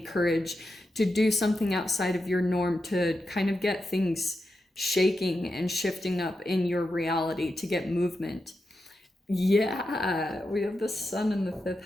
courage, to do something outside of your norm, to kind of get things shaking and shifting up in your reality, to get movement. Yeah, we have the Sun in the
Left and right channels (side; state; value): both; normal; correlation 0.88